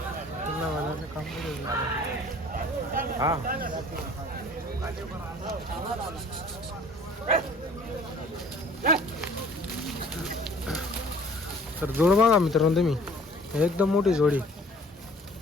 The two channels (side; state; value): both; normal; correlation 0.52